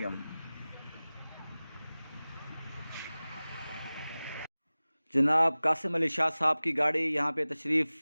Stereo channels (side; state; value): both; inverted; correlation -0.98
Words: جناب قاسم علی شاہ صاحب کی گاڑی یہاں پہ تشریف